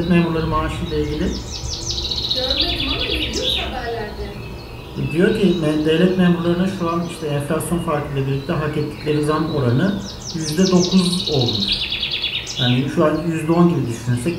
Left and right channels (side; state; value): both; identical; correlation 1.00